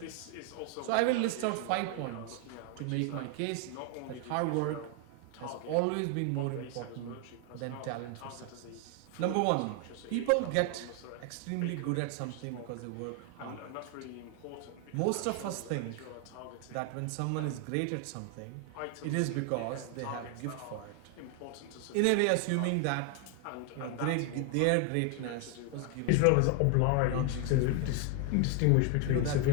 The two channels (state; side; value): different; both; correlation 0.00